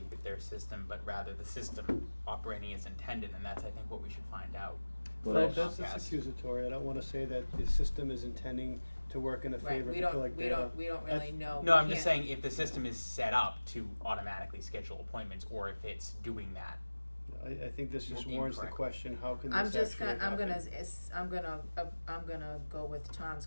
with their system, but rather the system operating as intended, and that's, I think, what we should find out. Well, That's Comcast. accusatory. I don't wanna say that the system is intending to work in the Right, favor we to don't, collect we data. don't, we don't really know. No, We I'm just can't- saying if the system is set up to automatically schedule appointments, or if it's doing that. I think this just Well, warrants the incorrect. question, how can I'm this just actually gonna, happen? I'm gonna go with Tom's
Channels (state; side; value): inverted; both; correlation -1.00